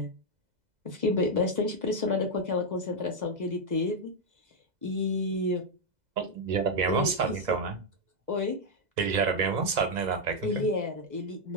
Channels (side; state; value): left; late; 2.0 ms